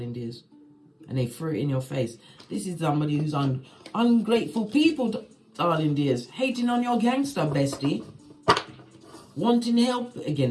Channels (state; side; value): identical; both; correlation 1.00